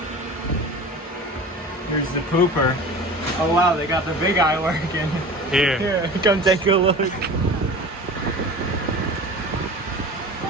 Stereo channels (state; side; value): normal; both; correlation 0.37